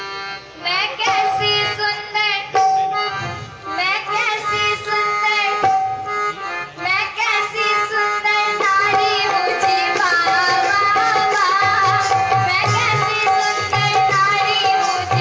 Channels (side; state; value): both; identical; correlation 1.00